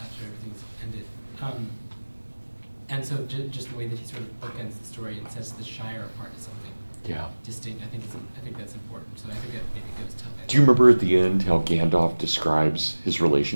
everything's ended. And so just the way that he sort of bookends the story and sets the Shire apart as something distinct. I think that's important. So I think that maybe goes to. Do you remember at the end how Gandalf describes his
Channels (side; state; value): both; inverted; correlation -1.00